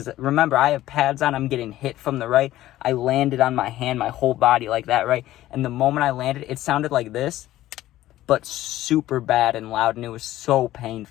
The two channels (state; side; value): quieter; right; 14.7 dB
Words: remember, I have pads on. I'm getting hit from the right. I landed on my hand, my whole body like that, right? And the moment I landed, it sounded like this, but super bad and loud, and it was so